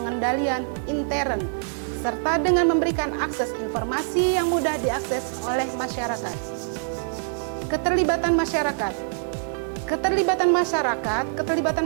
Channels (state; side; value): silent; left; digital silence